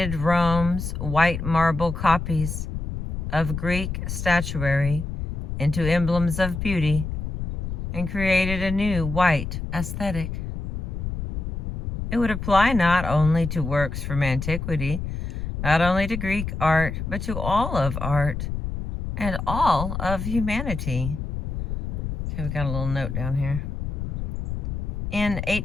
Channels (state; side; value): noise; left; rumble, 4 dB below the sound